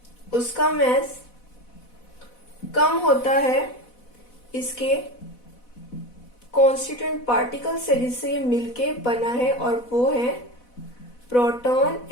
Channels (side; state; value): right; late; 4.1 ms